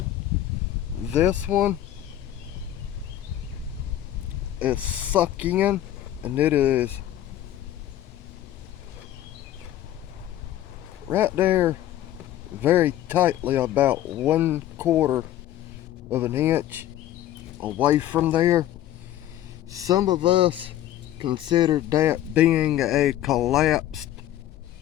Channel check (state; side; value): quieter; right; 12.6 dB